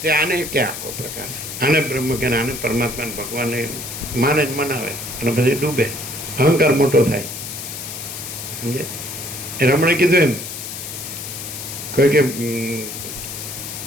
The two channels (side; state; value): left; noise; hiss, 8 dB below the sound